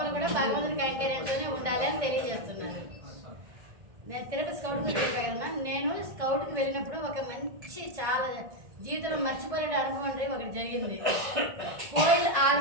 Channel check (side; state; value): left; late; 1.6 ms